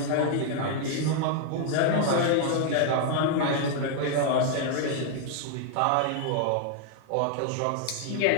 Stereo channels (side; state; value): both; different; correlation 0.00